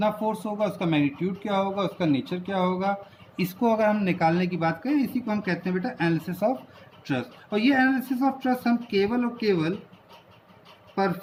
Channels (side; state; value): both; identical; correlation 1.00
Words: फोर्स होगा, उसका मैग्नीट्यूड क्या होगा, उसका नेचर क्या होगा, इसको अगर हम निकालने की बात करें, इसी को हम कहते हैं बेटा एनालिसिस ऑफ ट्रस्ट। और ये एनालिसिस ऑफ ट्रस्ट हम केवल और केवल